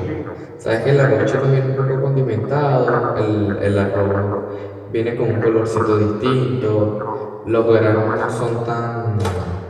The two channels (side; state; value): both; identical; correlation 1.00